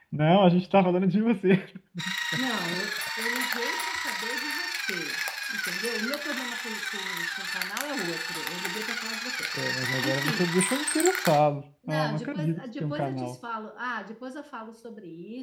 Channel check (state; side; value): identical; both; correlation 1.00